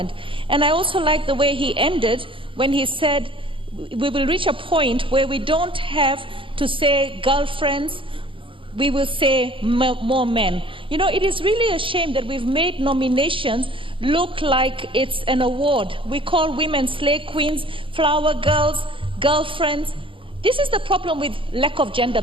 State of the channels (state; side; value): late; left; 0.25 ms